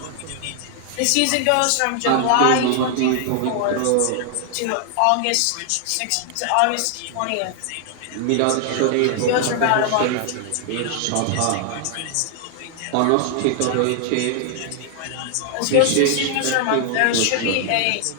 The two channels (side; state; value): both; different; correlation 0.00